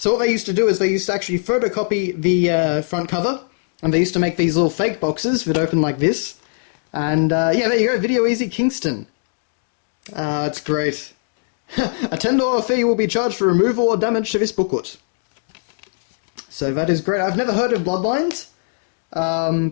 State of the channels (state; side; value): silent; right; digital silence